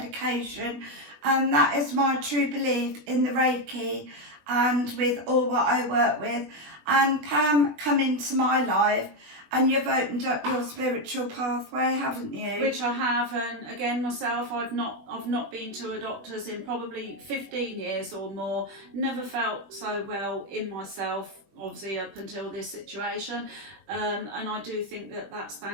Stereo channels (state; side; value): late; left; 20 ms